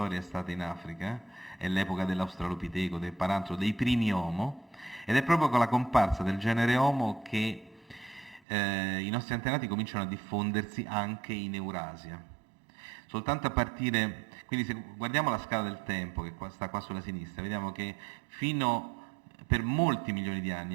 è stata in Africa, è l'epoca dell'Australopiteco, del Paranthro, dei primi Homo, ed è proprio con la comparsa del genere Homo che i nostri antenati cominciano a diffondersi anche in Eurasia. Soltanto a partire, quindi se guardiamo la scala del tempo che sta qua sulla sinistra, vediamo che per molti milioni di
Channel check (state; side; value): drops out; left; at 8.4 s